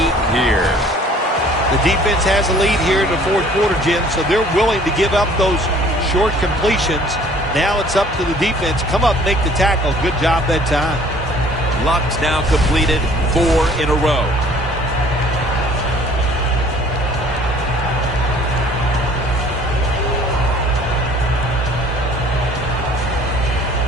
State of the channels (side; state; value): both; normal; correlation 0.54